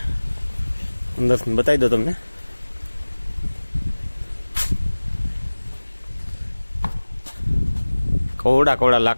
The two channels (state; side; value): inverted; both; correlation -1.00